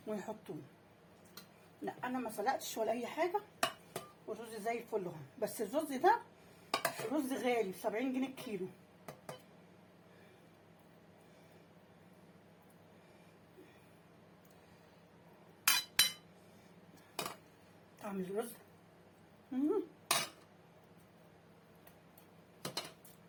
ويحطوه. لا انا ما سلقتش ولا اي حاجه، والرز زي الفل اهو. بس الرز ده رز غالي ب70 جنيه الكيلو. طعم الرز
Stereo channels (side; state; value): both; identical; correlation 1.00